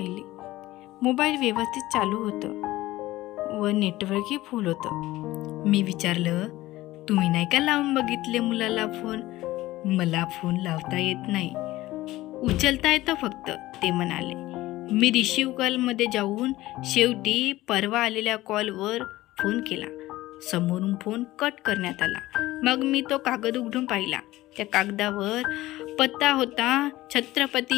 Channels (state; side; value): quieter; right; 17.1 dB